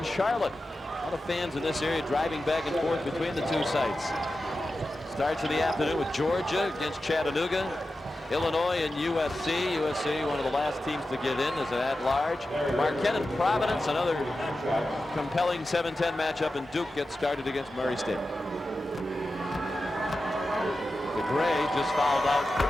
Charlotte. A lot of fans in this area driving back and forth between the two sites. Starts in the afternoon with Georgia against Chattanooga. Illinois and USC. USC, one of the last teams to get in as an at-large. Marquette and Providence, another compelling 7-10 matchup, and Duke gets started against Murray State. DeGray just fouled out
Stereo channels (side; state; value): both; normal; correlation 0.92